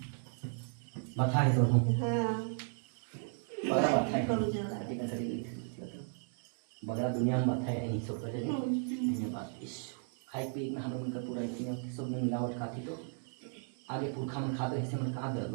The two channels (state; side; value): silent; left; 54 dB below the other